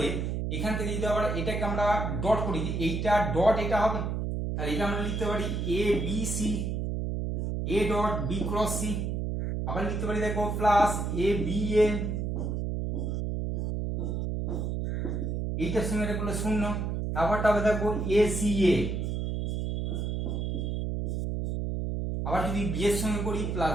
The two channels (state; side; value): noise; right; hum, 1 dB below the sound